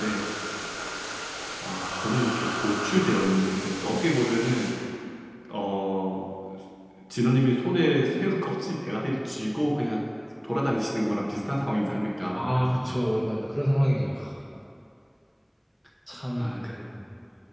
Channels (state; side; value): identical; both; correlation 1.00